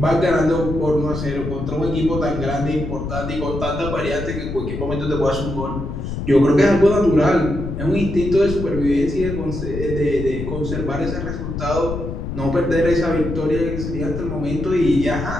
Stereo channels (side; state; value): left; noise; rumble, 6 dB below the sound